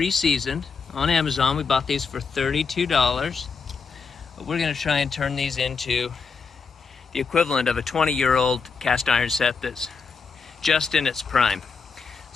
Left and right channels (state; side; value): quieter; right; 5.3 dB